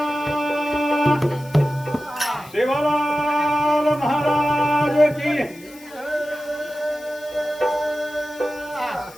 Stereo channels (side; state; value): left; noise; hiss, 22 dB below the sound